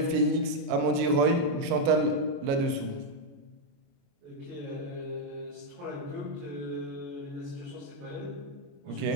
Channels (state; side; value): late; left; 29 ms